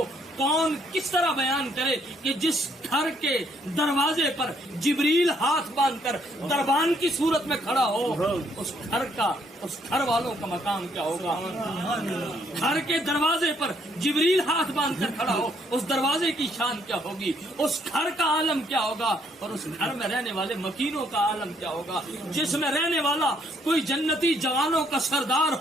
کون کس طرح بیان کرے کہ جس گھر کے دروازے پر جبریل ہاتھ باندھ کر دربان کی صورت میں کھڑا ہو، اس گھر کا، اس گھر والوں کا مقام کیا ہوگا۔ گھر کے دروازے پر جبریل ہاتھ باندھ کر کھڑا ہو، اس دروازے کی شان کیا ہوگی، اس گھر کا عالم کیا ہوگا، اور اس گھر میں رہنے والے مکینوں کا عالم کیا ہوگا، جس میں رہنے والا کوئی جنتی جوانوں کا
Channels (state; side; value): normal; both; correlation 0.69